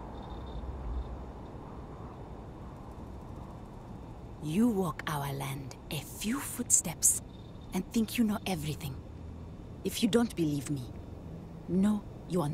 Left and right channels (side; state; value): both; identical; correlation 1.00